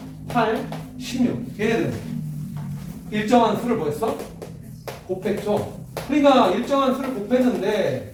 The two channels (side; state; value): both; identical; correlation 1.00